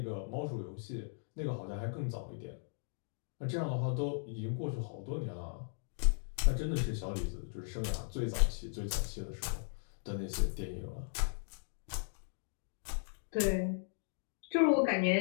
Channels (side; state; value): right; silent; digital silence